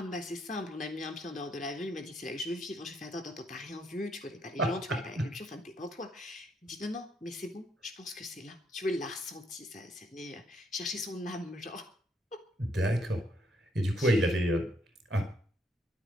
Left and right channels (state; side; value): normal; both; correlation 0.72